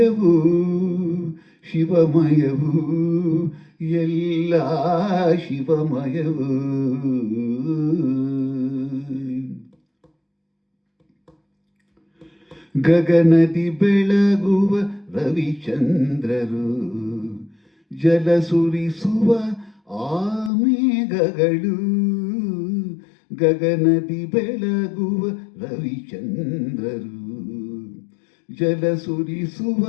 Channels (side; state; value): right; drops out; at 20.5 s